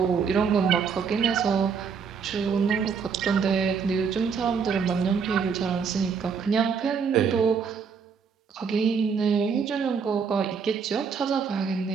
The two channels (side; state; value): left; quieter; 6.1 dB